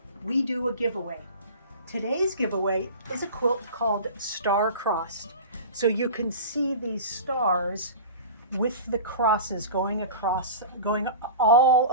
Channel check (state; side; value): inverted; both; correlation -0.34